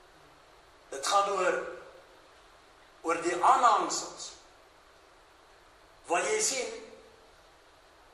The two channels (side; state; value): both; identical; correlation 1.00